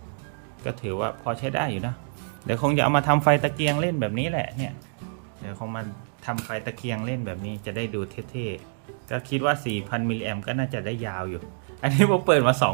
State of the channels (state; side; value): silent; left; digital silence